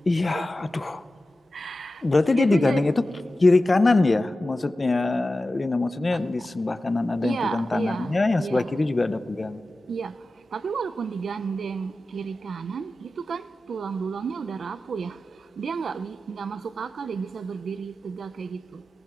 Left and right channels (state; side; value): normal; both; correlation 0.94